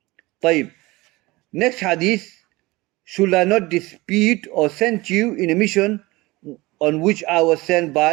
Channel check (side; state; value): left; quieter; 21.3 dB